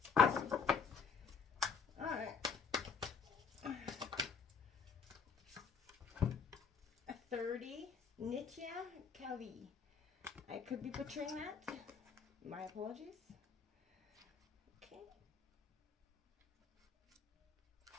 Alright. 30, Nitya Kali. I could be butchering that. My apologies.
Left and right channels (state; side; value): quieter; right; 5.9 dB